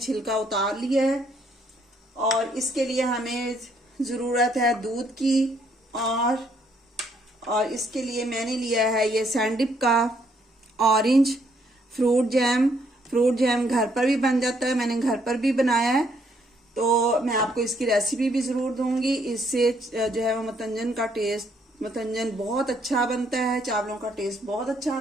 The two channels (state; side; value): normal; both; correlation 0.70